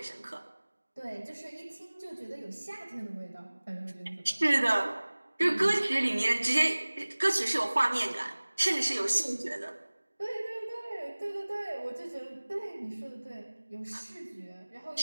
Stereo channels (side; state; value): both; inverted; correlation -1.00